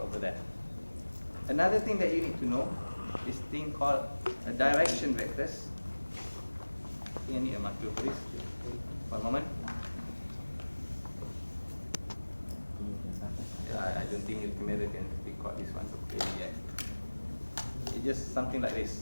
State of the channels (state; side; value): inverted; both; correlation -1.00